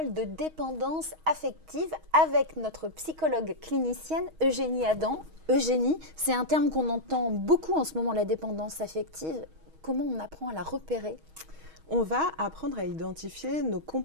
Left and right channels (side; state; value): left; late; 6.3 ms